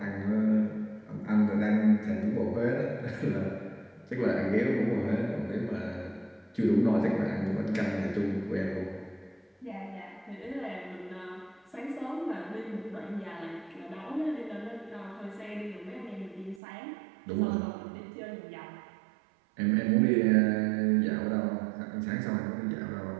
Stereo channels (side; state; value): left; drops out; at 16.6 s